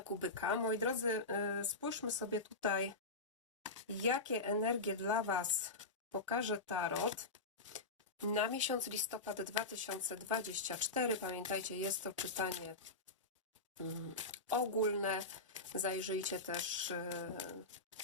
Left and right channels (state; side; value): quieter; right; 3.3 dB